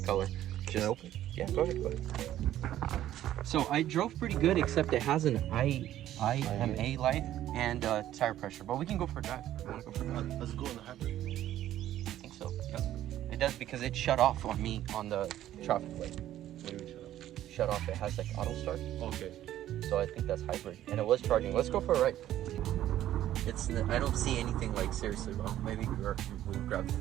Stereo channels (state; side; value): quieter; left; 12.7 dB